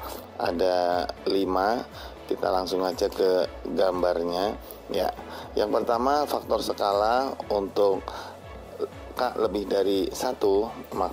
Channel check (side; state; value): both; identical; correlation 1.00